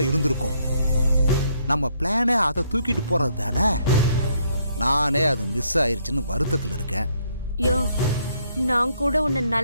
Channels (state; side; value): inverted; both; correlation -0.70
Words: இருந்திருக்கும். நம்ம பிளானே அதை தூக்கிட்டு போறது தானே. நானே அது மிஸ் ஆயிருச்சுன்னு வருத்தத்தில் இருக்கேன். யோ, நான் கூட உன்னை